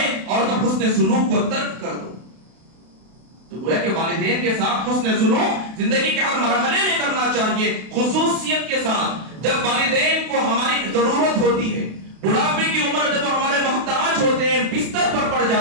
اور تب حسن سلوک کو ترک کر دو۔ تو گویا کہ والدین کے ساتھ حسن سلوک زندگی کے ہر مرحلے میں کرنا چاہیے، خصوصیت کے ساتھ جب والدین کو ہماری ضرورت ہوتی ہے، بڑھاپے کی عمر جب ہمارے محتاج ہوتے ہیں، بستر پر پڑ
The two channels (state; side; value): late; left; 32 ms